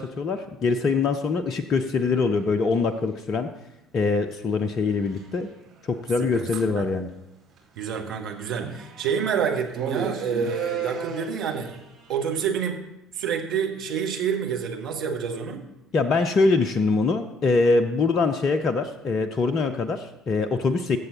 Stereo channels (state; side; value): normal; both; correlation 0.62